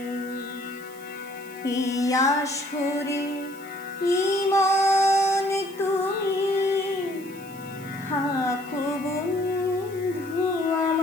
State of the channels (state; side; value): noise; right; hiss, 21 dB below the sound